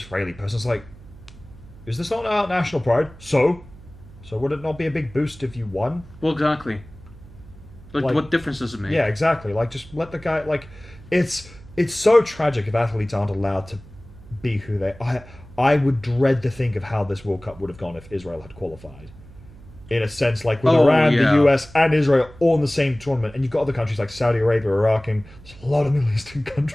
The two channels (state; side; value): noise; right; hum, 20 dB below the sound